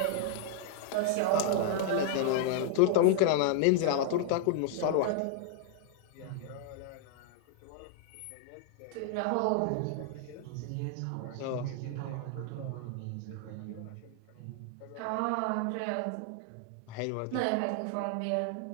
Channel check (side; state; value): both; different; correlation 0.00